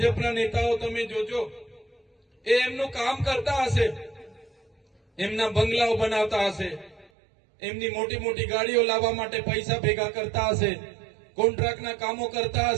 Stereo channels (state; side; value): drops out; left; at 7.1 s